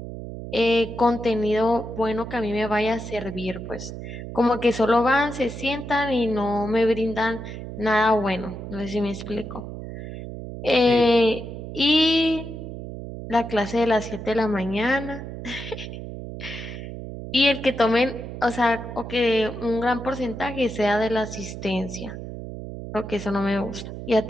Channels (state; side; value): noise; right; hum, 9 dB below the sound